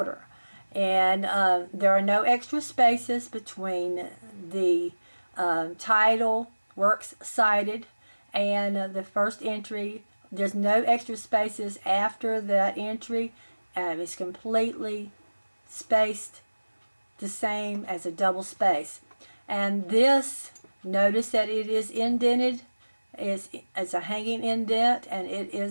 And there are no extra spaces between the title, works cited, and the first entry. There's no extra spaces after that entry. It's completely spaced the same as a double space. And this, notice that it is indented. It's a hanging indent, and it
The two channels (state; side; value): inverted; both; correlation -1.00